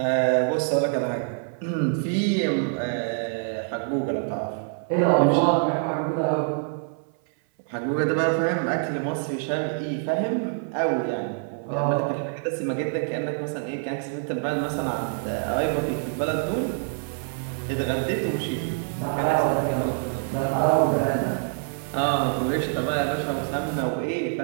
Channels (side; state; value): left; silent; 58 dB below the other